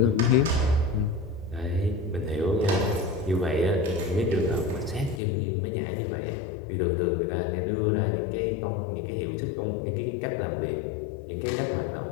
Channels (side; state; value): right; drops out; at 5.2 s